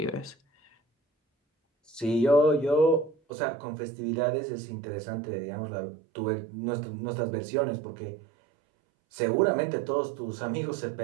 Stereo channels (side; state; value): left; drops out; at 3.2 s